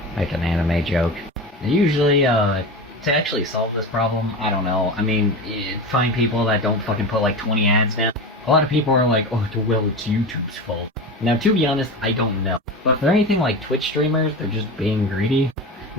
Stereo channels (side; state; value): both; normal; correlation 0.26